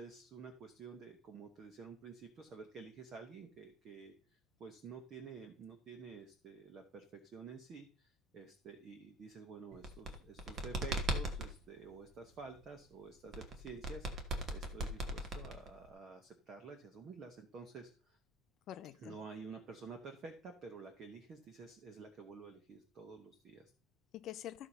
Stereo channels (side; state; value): both; normal; correlation 0.44